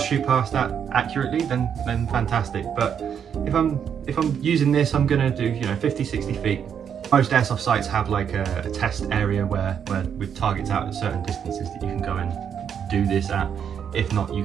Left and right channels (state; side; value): quieter; left; 8.0 dB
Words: shoot past that accurately, then fantastic. But if I'm using this, I'm gonna do 50, 60 feet. Most airsoft sites have like a test area where with targets out at certain distances that you can go and do this at. If not,